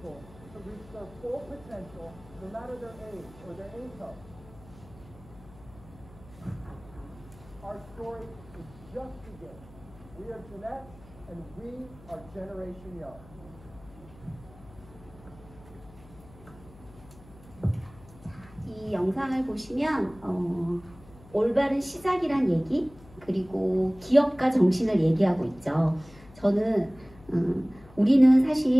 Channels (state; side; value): noise; left; hum, 22 dB below the sound